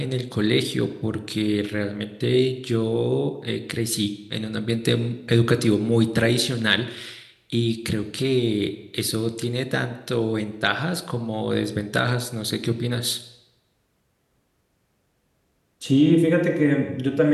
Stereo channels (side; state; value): both; identical; correlation 1.00